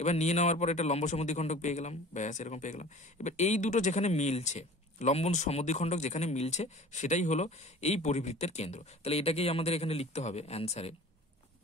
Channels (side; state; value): both; normal; correlation 0.43